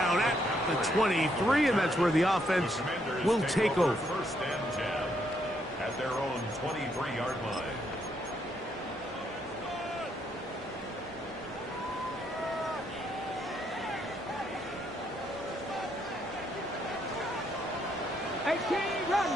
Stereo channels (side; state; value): both; normal; correlation 0.74